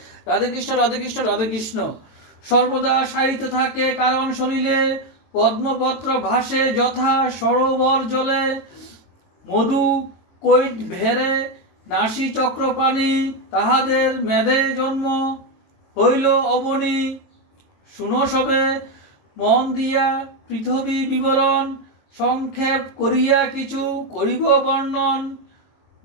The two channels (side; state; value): right; late; 23 ms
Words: রাধেকৃষ্ণ রাধেকৃষ্ণ রাধেকৃষ্ণ। সর্বদা সাহিত্য থাকে কারণ শরীরে পদ্মপত্র ভাসে যথা সরোবর জলে, মধু কৈট ভেরে নাসি চক্রপাণি, তাহাদের মেধে জন্ম হইল অবনী। শুনো সবে মন দিয়া পৃথিবী বিবরণ, সংক্ষেপ করিয়া কিছু করিব বর্ণন।